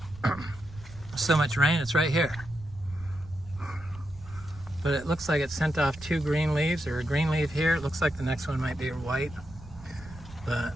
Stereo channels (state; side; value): noise; right; rumble, 18 dB below the sound